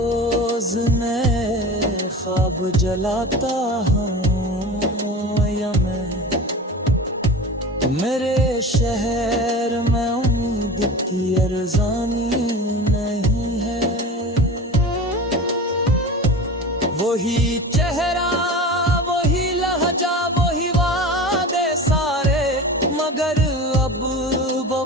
नए ख्वाब जलाता हूँ या मैं, मेरे शहर में उम्मीद की अरज़ानी नहीं है। वही चेहरा वही लहजा वही वादे सारे, मगर अब वो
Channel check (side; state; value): both; normal; correlation 0.33